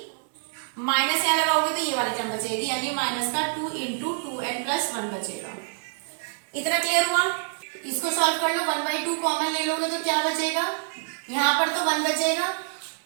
माइनस यहाँ लगाओगे तो ये वाली टर्म बचेगी, यानी माइनस का 2 × 2n + 1 बचेगा। इतना क्लियर हुआ। इसको सॉल्व कर लो, 1/2 कॉमन ले लोगे तो क्या बचेगा, यहाँ पर तो 1 बचेगा,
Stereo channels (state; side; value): silent; left; digital silence